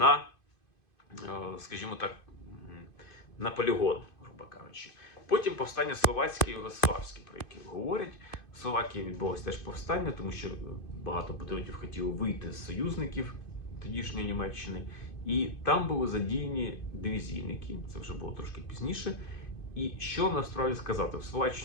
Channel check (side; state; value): right; late; 2.5 ms